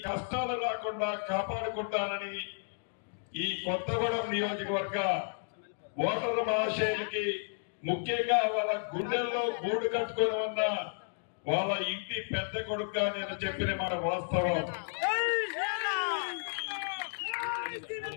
కష్టాలు రాకుండా కాపాడుకుంటానని ఈ కొత్తగూడెం నియోజకవర్గ ఓటరు మహాశయులకి, ముఖ్యంగా వాళ్ళ గుండెల్లో గూడు కట్టుకొని ఉన్న వాళ్ళ ఇంటి పెద్ద కొడుకుగా నేను చెప్పిన మాట వాస్తవం.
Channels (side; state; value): right; silent; digital silence